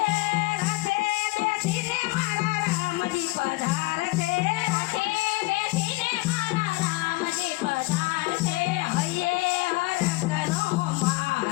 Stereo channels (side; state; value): right; quieter; 22.0 dB